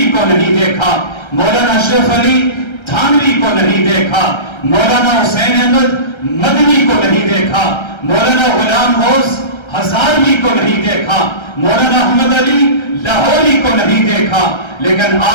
کو نہیں دیکھا، مولانا اشرف علی تھانوی کو نہیں دیکھا، مولانا حسین احمد مدنی کو نہیں دیکھا، مولانا غلام غوث ہزاروی کو نہیں دیکھا، مولانا احمد علی لاہوری کو نہیں دیکھا، لیکن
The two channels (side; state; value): right; late; 1.3 ms